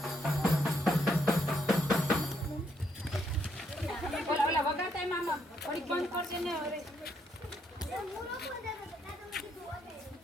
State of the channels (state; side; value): normal; both; correlation 0.74